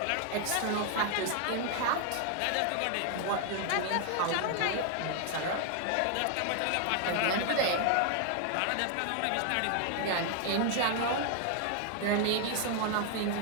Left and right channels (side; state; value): both; different; correlation 0.00